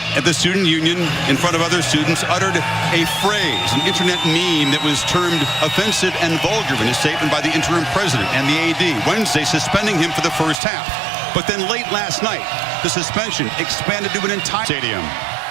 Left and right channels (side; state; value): left; drops out; at 10.6 s